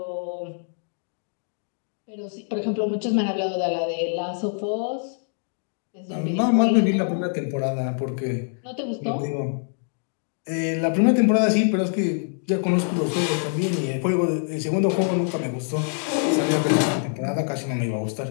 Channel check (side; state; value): right; silent; 62 dB below the other